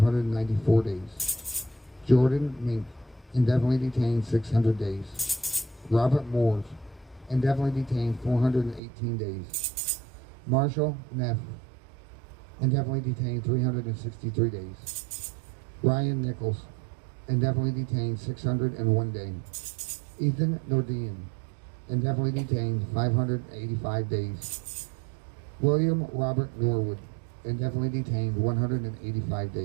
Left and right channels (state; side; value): drops out; left; at 8.8 s